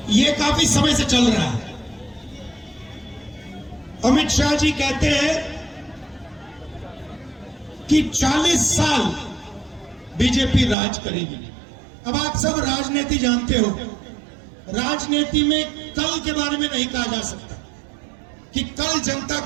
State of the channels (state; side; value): drops out; left; at 10.8 s